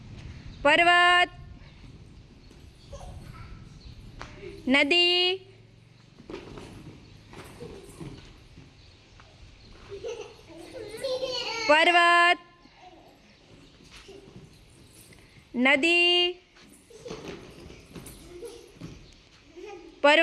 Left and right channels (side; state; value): both; identical; correlation 1.00